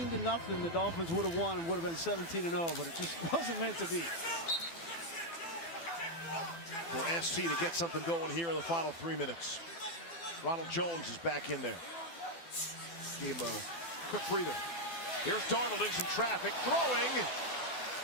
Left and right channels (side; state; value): right; late; 12 ms